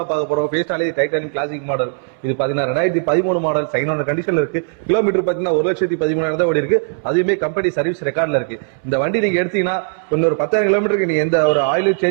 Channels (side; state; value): left; silent; 67 dB below the other